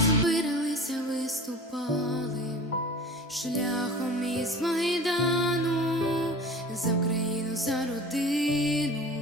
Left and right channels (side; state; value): both; normal; correlation 0.39